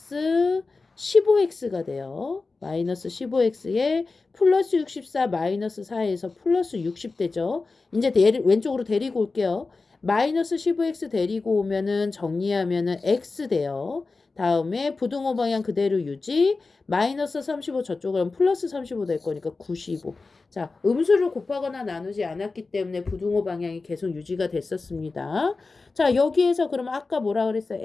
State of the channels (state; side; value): quieter; right; 3.9 dB